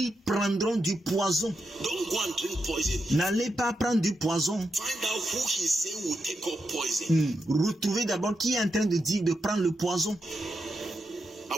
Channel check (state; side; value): normal; both; correlation 0.86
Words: prendront du poison. Don't go and drink poison. N'allez pas prendre du poison. Find out who he's saying will take up poison. Retrouvez d'abord qui est en train de dire de prendre le poison.